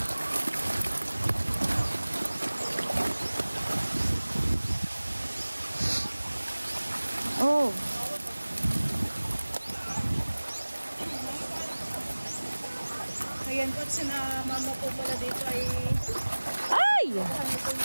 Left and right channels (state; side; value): inverted; both; correlation -1.00